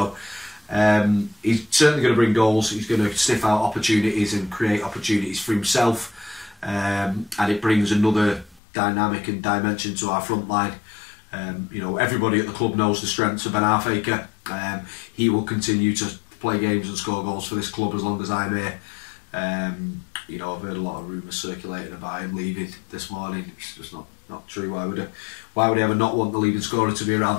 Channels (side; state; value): right; drops out; at 8.6 s